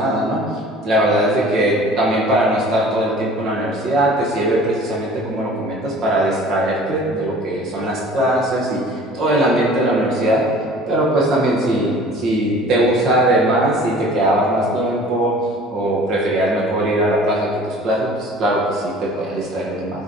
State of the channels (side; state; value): both; normal; correlation 0.47